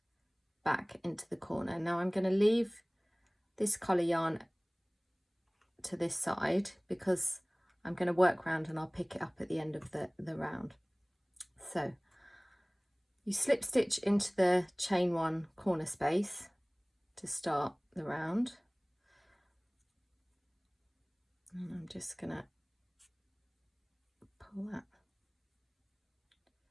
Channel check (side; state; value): both; identical; correlation 1.00